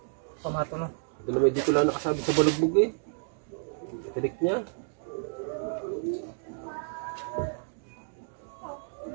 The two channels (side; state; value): left; silent; 58 dB below the other